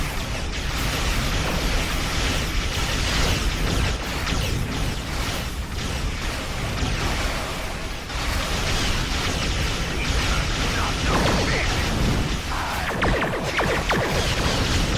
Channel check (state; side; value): identical; both; correlation 1.00